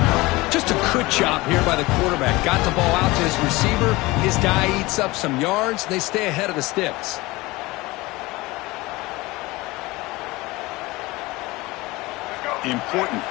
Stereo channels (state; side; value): quieter; right; 21.3 dB